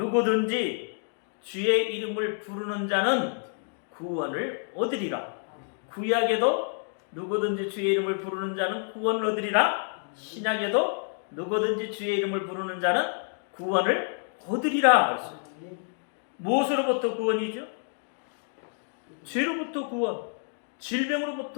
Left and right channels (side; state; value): right; silent; 59 dB below the other